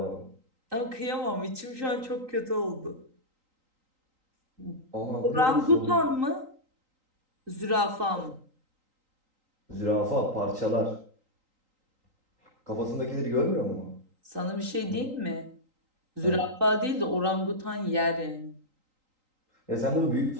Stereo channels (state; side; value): late; left; 3.8 ms